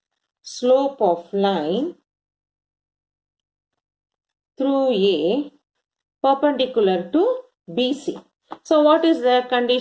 slope of line through A perpendicular to BC. So what is the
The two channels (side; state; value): both; identical; correlation 1.00